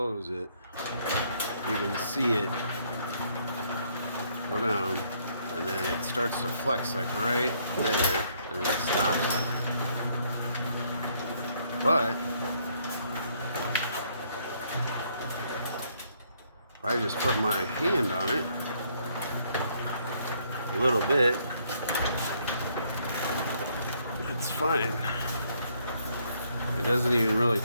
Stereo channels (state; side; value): inverted; both; correlation -0.68